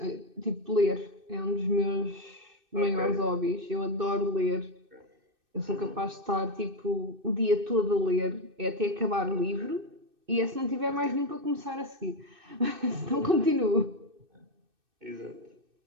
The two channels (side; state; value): left; late; 2.6 ms